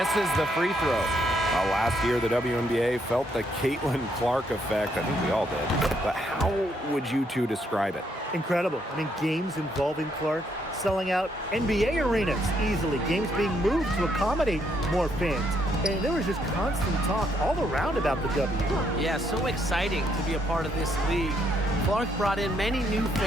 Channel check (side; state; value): both; normal; correlation 0.73